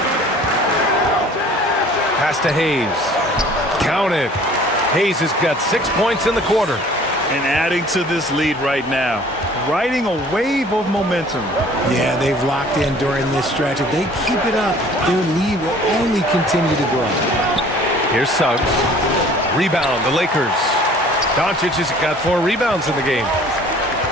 Pass to Hayes. Count it. Hayes has got 6 points in the quarter. And adding to this lead right now. Riding a wave of momentum. Yeah, they've locked in during this stretch. If they keep it up, their lead will only continue to grow. Here's Suggs. Rebound, the Lakers. Doncic has got 4 rebounds in the game.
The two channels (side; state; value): both; normal; correlation 0.51